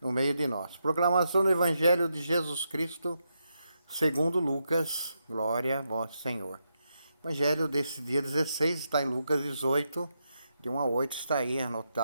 no meio de nós. Proclamação do Evangelho de Jesus Cristo, segundo Lucas, glória a vós, Senhor. O Evangelho desse dia 16 está em Lucas 18, de 1 a 8, está aí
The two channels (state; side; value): inverted; both; correlation -0.83